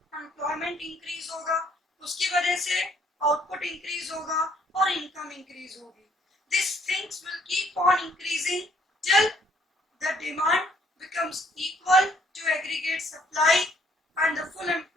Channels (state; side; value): normal; both; correlation 0.65